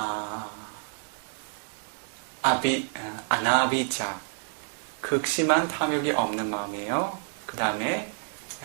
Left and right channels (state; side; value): silent; left; 59 dB below the other